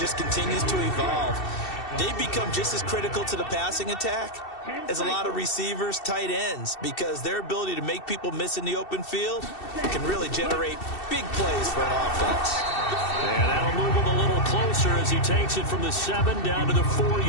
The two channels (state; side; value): late; right; 2.7 ms